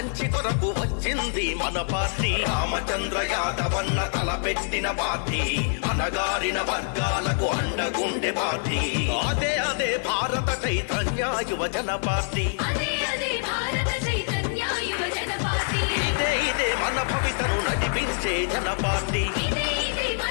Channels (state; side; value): silent; right; 61 dB below the other